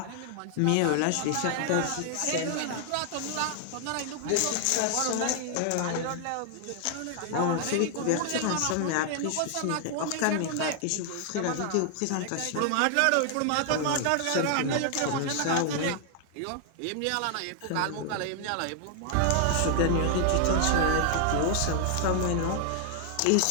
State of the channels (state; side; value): different; both; correlation 0.00